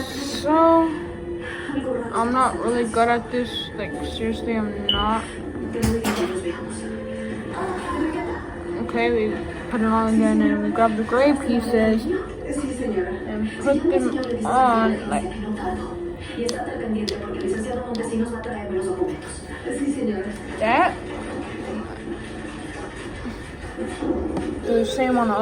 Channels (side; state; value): both; identical; correlation 1.00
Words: so. I'm not really good at this. Like seriously, I'm not. Okay, we put it on again, and we grab the gray pieces and put them on like that. Do the same on the